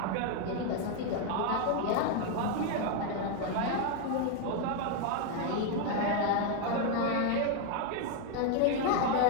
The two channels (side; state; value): both; different; correlation 0.01